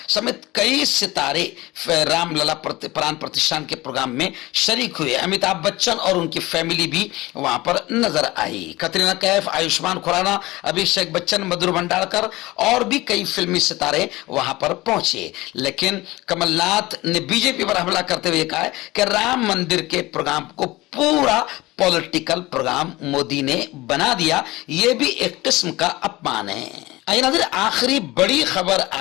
समेत कई सितारे रामलला प्राण प्रतिष्ठान के प्रोग्राम में शरीक हुए। अमिताभ बच्चन और उनकी फैमिली भी वहां पर नजर आई। कतरीना कैफ, आयुष्मान खुराना, अभिषेक बच्चन, मधुर भंडारकर और भी कई फिल्मी सितारे वहां पर पहुंचे। लेकिन कमलनाथ ने बीजेपी पर हमला करते हुए कहा है कि राम मंदिर के प्रोग्राम को पूरा पॉलिटिकल प्रोग्राम मोदी ने बना दिया। यह भी एक किस्म का अपमान है। आइए नाज़रीन, आखिरी बड़ी खबर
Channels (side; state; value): right; quieter; 19.7 dB